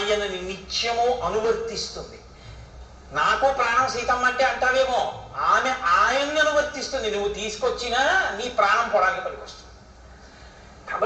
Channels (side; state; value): both; identical; correlation 1.00